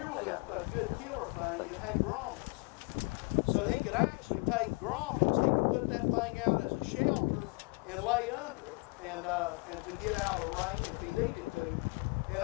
was a good killer thing. It had grommets. So he could actually take grommets. He could put that thing out as a shelter and lay under it and to get out of the rain if he needed to. And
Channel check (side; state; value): right; quieter; 30.6 dB